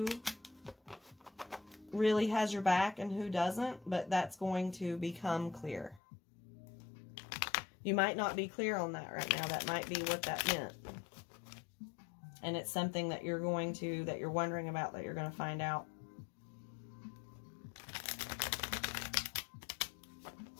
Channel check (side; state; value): right; drops out; at 6.0 s